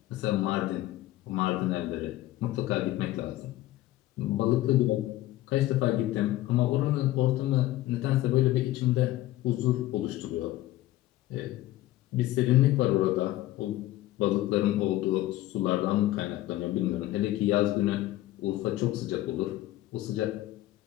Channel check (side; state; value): right; quieter; 15.8 dB